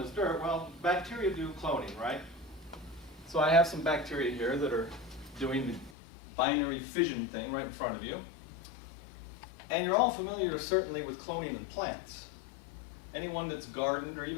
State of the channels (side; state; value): right; drops out; at 6.0 s